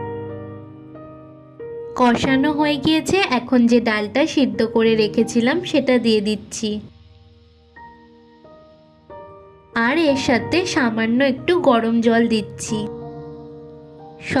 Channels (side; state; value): both; identical; correlation 1.00